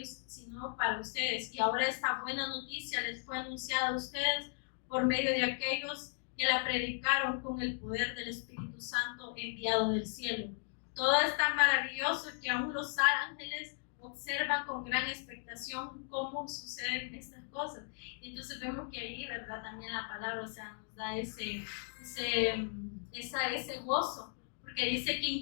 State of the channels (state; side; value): silent; right; 53 dB below the other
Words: sino para ustedes. Y ahora esta buena noticia les fue anunciada a ustedes por medio de aquellos que la predicaron con el poder del Espíritu Santo enviado del cielo. Todo es tan maravilloso que aún los ángeles observan con gran expectación cómo suceden estas cosas. Entonces vemos que ahí, ¿verdad? También la palabra, o sea, nos da ese gozo, porque dice que